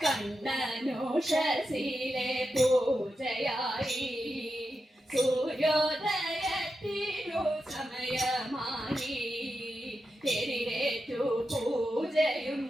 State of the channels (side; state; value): both; normal; correlation 0.89